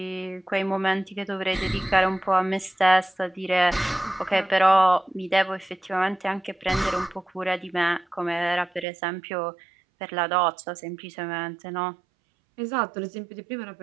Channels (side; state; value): left; drops out; at 8.8 s